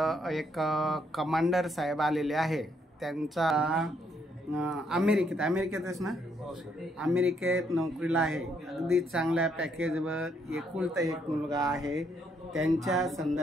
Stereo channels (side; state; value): both; normal; correlation 0.72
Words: कमांडर साहेब आलेले आहे. त्यांचा अमेरिकेतच ना, अमेरिकेत नोकरीला आहे. अगदी चांगल्या पॅकेजवर एकुलता एक मुलगा आहे. त्यांच्या